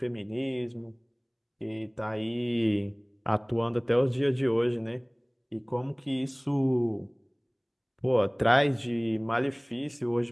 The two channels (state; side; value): identical; both; correlation 1.00